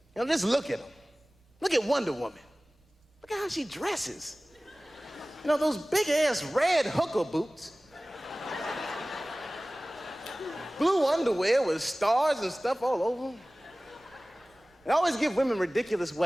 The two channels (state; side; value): normal; both; correlation 0.98